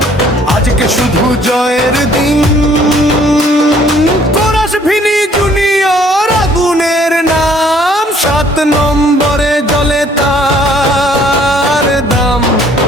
আজকে শুধু জয়ের দিন। কোরাস ভিনি জুনিয়র আগুনের নাম, সাত নম্বরে জ্বলে তার দাম।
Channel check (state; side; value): normal; both; correlation 0.60